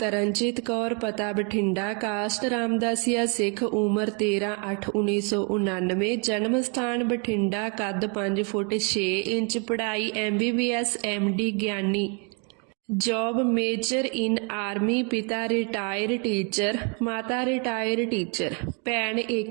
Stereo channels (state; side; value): quieter; left; 36.1 dB